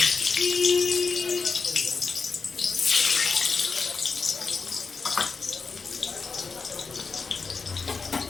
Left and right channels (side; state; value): right; quieter; 4.8 dB